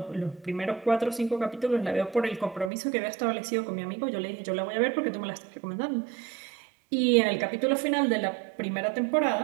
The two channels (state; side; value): drops out; left; at 2.7 s